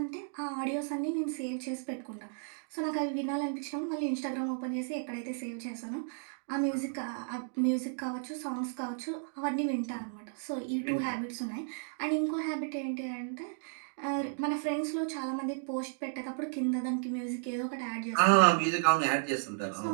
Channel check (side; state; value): left; silent; digital silence